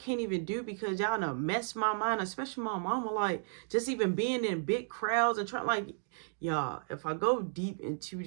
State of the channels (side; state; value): left; silent; digital silence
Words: even do because y'all done mess my mind, especially my mama. Like, just even being in big crowds and trying, like, y'all, if I go deep into